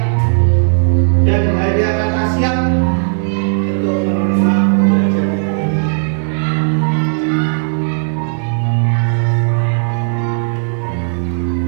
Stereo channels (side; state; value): left; silent; digital silence